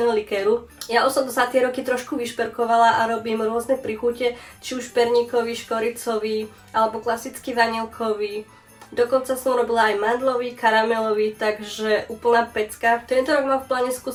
likéru. Ja už som to za tie roky trošku vyšperkovala a robím rôzne príchute, či už perníkový, škoricový alebo klasický vanilkový. Dokonca som robila aj mandlový, karamelový, takže úplná pecka. Tento rok mám v pláne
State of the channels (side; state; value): both; identical; correlation 1.00